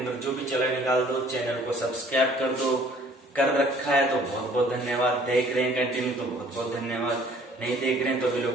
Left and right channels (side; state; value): both; normal; correlation 0.56